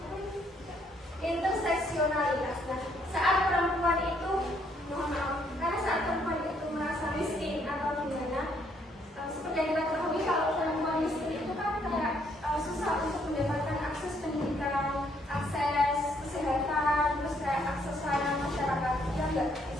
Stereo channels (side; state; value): both; normal; correlation 0.69